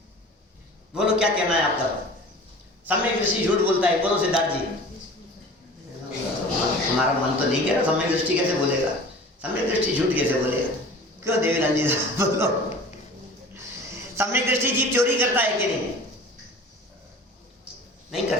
बोलो क्या कहना है आपका? सम्यक दृष्टि झूठ बोलता है, बोलो सिद्धार्थ जी। हमारा मन तो नहीं कह रहा सम्यक दृष्टि कैसे बोलेगा, सम्यक दृष्टि झूठ कैसे बोलेगा? क्यों देवीलाल जी बोलो, सम्यक दृष्टि जीव चोरी करता है कि नहीं? नहीं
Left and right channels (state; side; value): normal; both; correlation 0.41